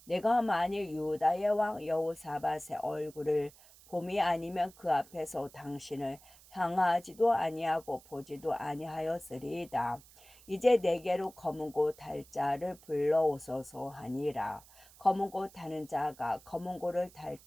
내가 만일 유다의 왕 여호사밧의 얼굴을 봄이 아니면 그 앞에서 당신을 향하지도 아니하고 보지도 아니하였으리이다. 이제 내게로 검은 곳 달 자를 불러오소서 하니라. 검은 곳 타는 자가 검은 곳을 탈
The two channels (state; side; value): noise; right; hiss, 24 dB below the sound